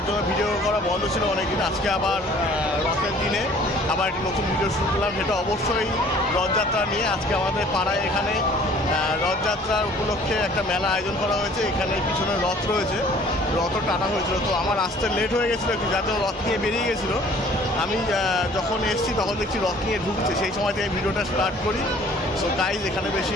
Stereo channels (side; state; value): both; normal; correlation 0.53